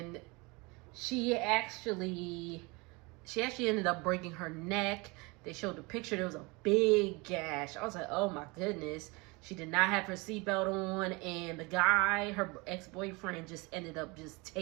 she actually ended up breaking her neck. They showed the picture. There was a big gash. I was like, oh, my goodness. She did not have her seatbelt on. And the guy, her ex-boyfriend, just ended up just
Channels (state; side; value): quieter; left; 26.4 dB